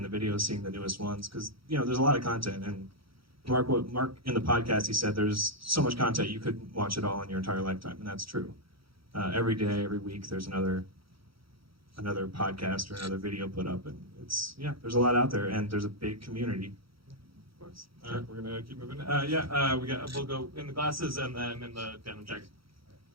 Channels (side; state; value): left; late; 0.75 ms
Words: the videos, seeing the newest ones, because there's a lot of content. And Mark in the podcast, he said there's so much content you couldn't watch it all in your entire lifetime, and that's true. Every day, every week, there's another podcast or another video put up, and there's a lot out there, and there's a big community. All right, we're gonna keep moving. We'll go in the glasses and then in the denim jacket.